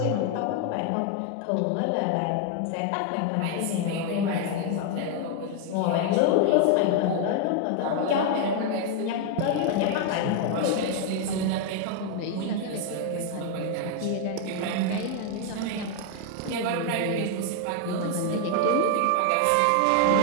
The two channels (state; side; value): different; both; correlation 0.00